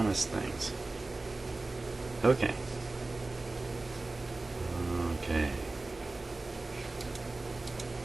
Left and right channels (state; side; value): quieter; left; 3.2 dB